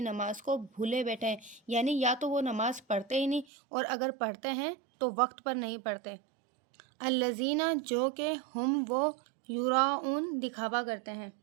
نماز کو بھولے بیٹھے ہیں، یعنی یا تو وہ نماز پڑھتے ہی نہیں، اور اگر پڑھتے ہیں تو وقت پر نہیں پڑھتے۔ الذین، جو کہ، ہم، وہ، یراؤن، دکھاوا کرتے ہیں۔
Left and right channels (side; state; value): left; drops out; at 3.5 s